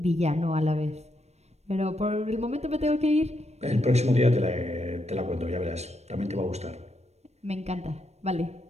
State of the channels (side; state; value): left; late; 0.31 ms